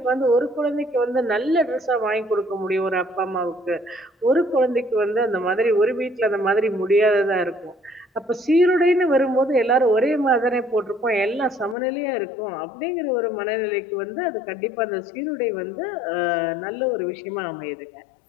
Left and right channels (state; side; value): drops out; right; at 11.8 s